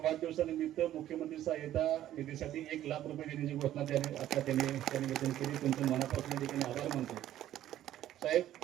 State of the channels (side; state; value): left; quieter; 12.6 dB